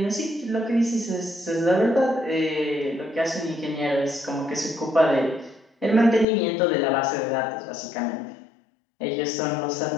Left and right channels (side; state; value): right; drops out; at 6.2 s